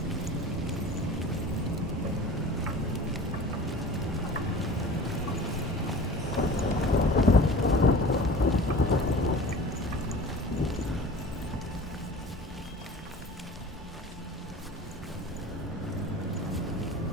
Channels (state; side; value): normal; both; correlation 0.40